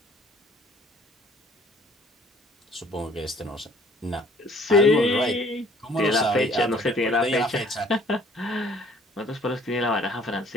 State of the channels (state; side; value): normal; both; correlation 0.56